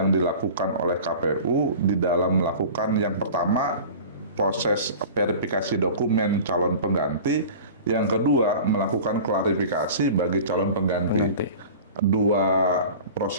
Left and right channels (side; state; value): both; inverted; correlation -0.39